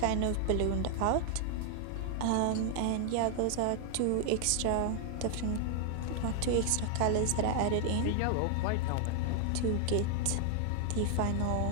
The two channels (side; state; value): both; different; correlation 0.00